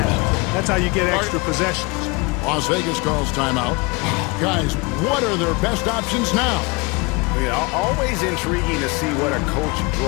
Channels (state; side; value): quieter; right; 26.9 dB